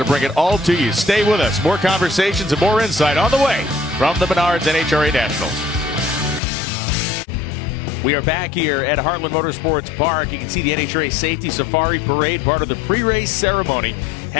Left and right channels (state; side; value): drops out; right; at 6.4 s